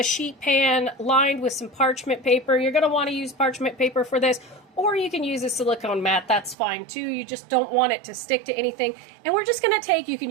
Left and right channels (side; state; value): left; drops out; at 6.6 s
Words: sheet pan lined with some parchment paper. You're going to want to use parchment paper for this, or you can use a silicone mat. That's fine too. You just don't want it to stick to anything. And we're just going to take, you